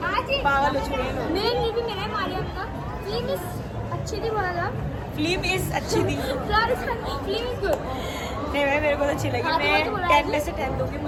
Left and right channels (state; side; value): identical; both; correlation 1.00